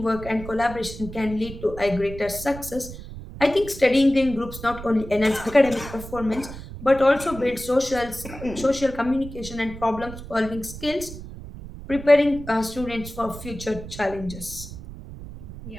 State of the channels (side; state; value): right; noise; rumble, 12 dB below the sound